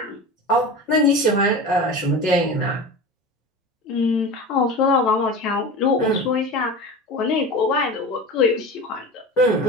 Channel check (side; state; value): both; normal; correlation 0.31